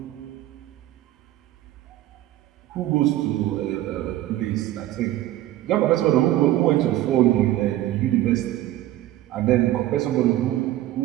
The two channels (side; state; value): left; quieter; 14.6 dB